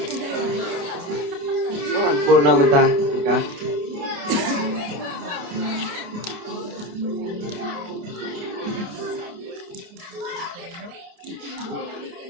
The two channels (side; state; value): left; late; 28 ms